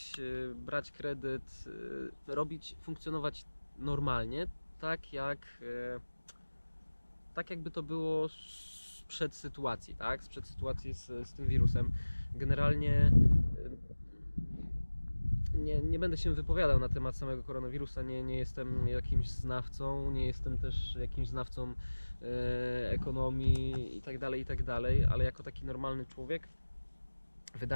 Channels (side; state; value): both; inverted; correlation -1.00